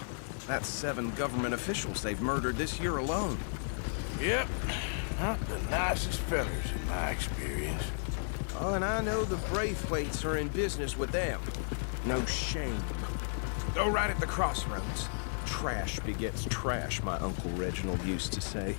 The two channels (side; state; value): right; silent; digital silence